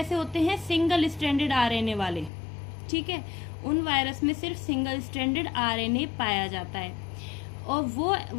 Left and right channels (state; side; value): drops out; right; at 2.3 s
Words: होते हैं, सिंगल स्ट्रैंडेड आरएनए वाले, ठीक है। उन वायरस में सिर्फ सिंगल स्ट्रैंडेड आरएनए पाया जाता है, और वो